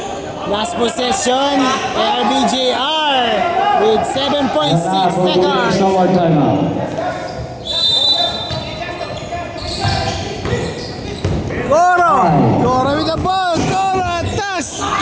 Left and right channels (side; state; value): both; identical; correlation 1.00